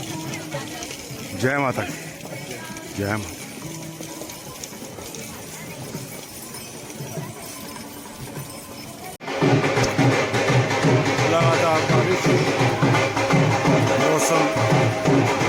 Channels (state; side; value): identical; both; correlation 1.00